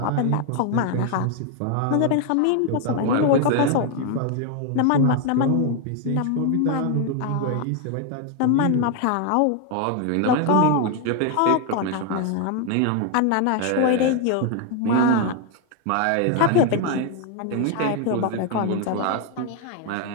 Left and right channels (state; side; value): different; both; correlation 0.01